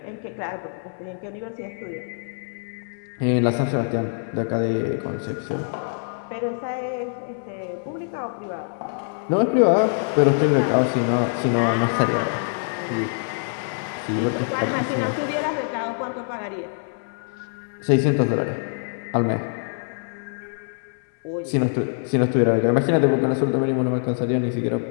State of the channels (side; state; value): right; silent; 62 dB below the other